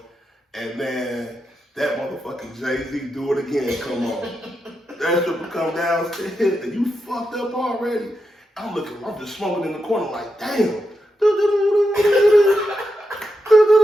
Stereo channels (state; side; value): normal; both; correlation 0.86